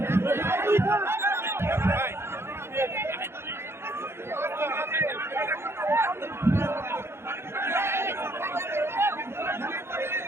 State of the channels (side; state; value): left; late; 0.12 ms